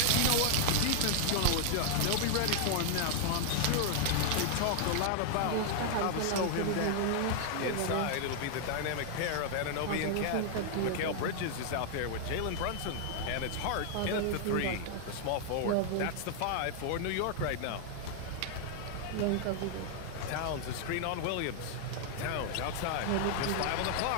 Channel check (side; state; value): both; different; correlation 0.00